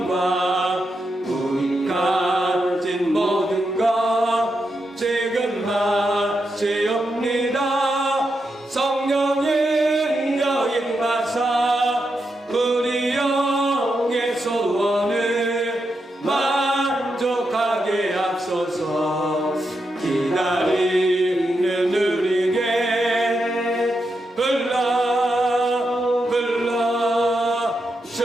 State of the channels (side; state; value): both; normal; correlation 0.85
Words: 우리 가진 모든 것 지금 마치옵니다. 성령의 여임하사 우리 영의 소원을 만족하게 하소서. 기다리는 우리에게